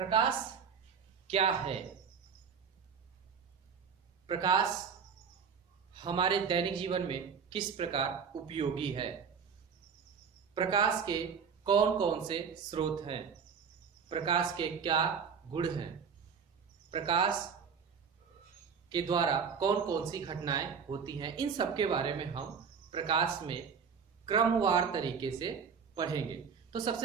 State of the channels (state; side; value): quieter; left; 6.3 dB